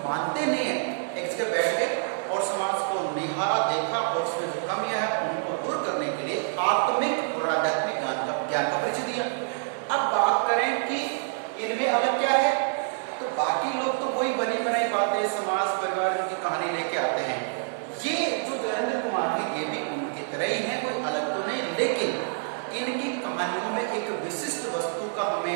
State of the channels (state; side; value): silent; left; 60 dB below the other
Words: मानते नहीं है। एक जगह बैठ के और समाज को निहारा, देखा और उसमें जो कमियां है उनको दूर करने के लिए आत्मिक और आध्यात्मिक ज्ञान का परिचय दिया। अब बात करें कि इनमें अलग क्या है, तो बाकी लोग तो वही बनी बनाई बातें, समाज परिवार की कहानी लेके आते हैं। ये जो जयेंद्र कुमार है ये भी उनकी तरह ही है, कोई अलग तो नहीं, लेकिन इनकी कहानियों में एक विशिष्ट वस्तु का,